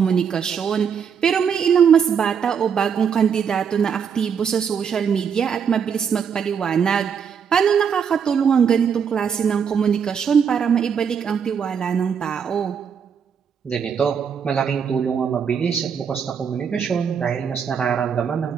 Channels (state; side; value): quieter; left; 7.1 dB